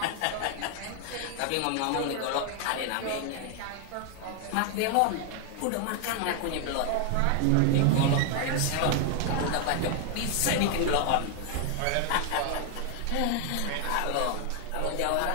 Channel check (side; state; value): both; different; correlation 0.00